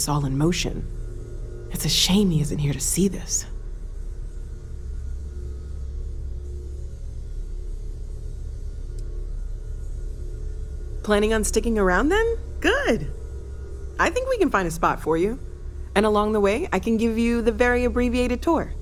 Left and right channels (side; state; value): both; identical; correlation 1.00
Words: all in motion. It's a shame he isn't here to see this. Planning on sticking around then? Good. I think we can find a spot for you. And along the way, I can give you the very abbreviated tour.